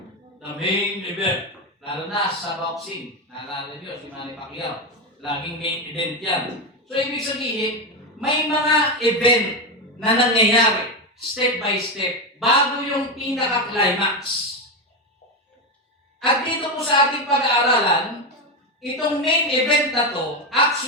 The main event. Lalo na sa boxing. Naalala nyo, si Manny Pacquiao. Laging main event yan. So, ibig sabihin, may mga event na nangyayari, step by step, bago yung pinaka-climax. At dito po sa ating pag-aaralan, itong main event na to,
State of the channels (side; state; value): both; normal; correlation 0.12